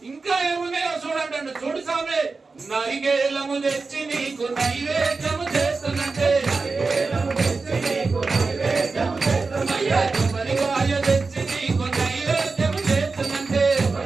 ఇంకా ఏమున్నాయో చూడంటాడు. చూడు స్వామి, నరిగేలము తెచ్చి నీకు నైవేద్యము చేస్తున్నట్టే, కొబ్బరికాయ తెచ్చి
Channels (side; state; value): left; quieter; 4.1 dB